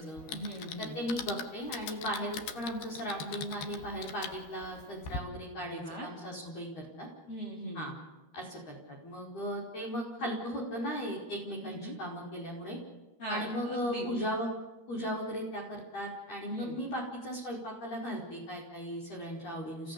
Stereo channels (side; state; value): right; late; 13 ms